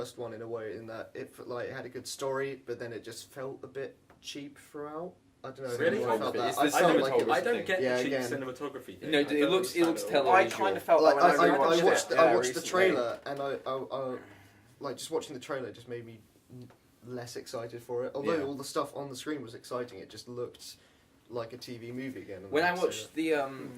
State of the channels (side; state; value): both; identical; correlation 1.00